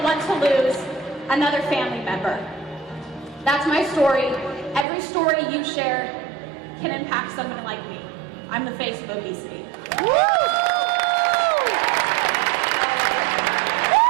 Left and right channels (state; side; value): drops out; left; at 4.9 s